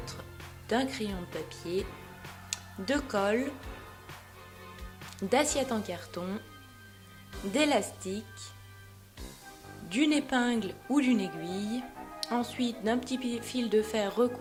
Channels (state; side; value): identical; both; correlation 1.00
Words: d'un crayon de papier, de colle, d'assiettes en carton, d'élastique, d'une épingle ou d'une aiguille, ensuite d'un petit fil de fer